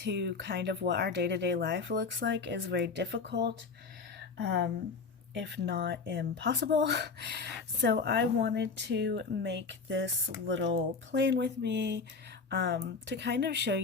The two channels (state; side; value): quieter; right; 4.8 dB